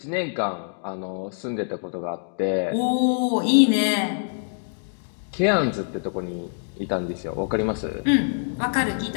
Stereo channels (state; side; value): silent; right; digital silence